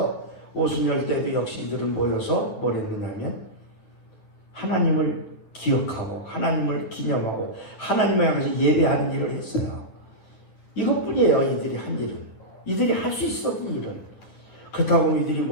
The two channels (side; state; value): right; late; 9.9 ms